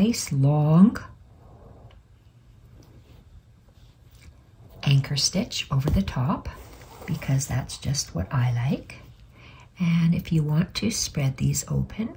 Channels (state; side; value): identical; both; correlation 1.00